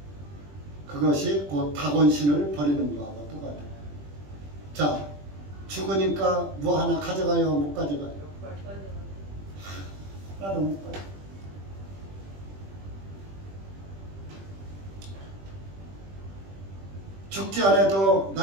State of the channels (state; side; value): late; left; 20 ms